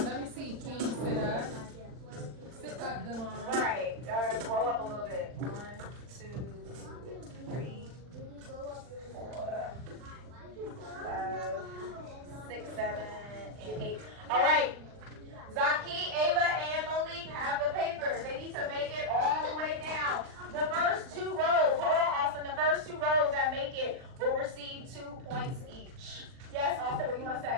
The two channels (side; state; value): left; late; 39 ms